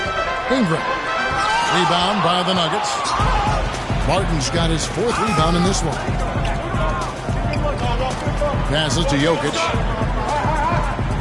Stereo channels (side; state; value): both; identical; correlation 1.00